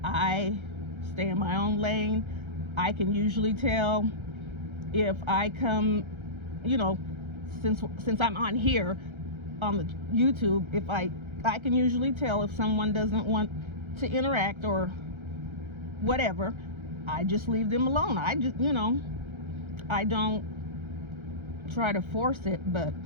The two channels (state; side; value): late; left; 1.3 ms